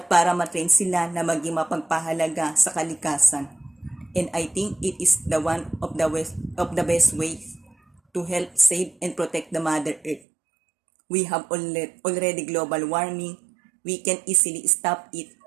para matrain sila na maging mapagpahalaga sa kalikasan. And I think it is the one of the best ways to help save and protect the Mother Earth. We have already global warming. We can easily stop it,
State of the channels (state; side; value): drops out; left; at 10.2 s